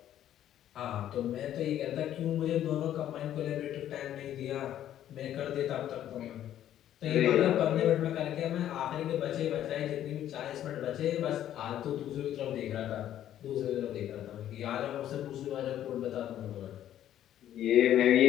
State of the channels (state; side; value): quieter; right; 11.5 dB